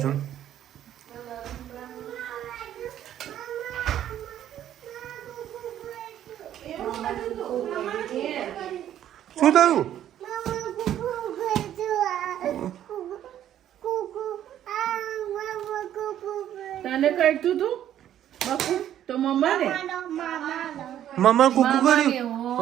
છે. શું થયું? તને કરતું તું બાપુ તો મમ્માને મામા કુકુ કર્યું.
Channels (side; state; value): left; quieter; 11.1 dB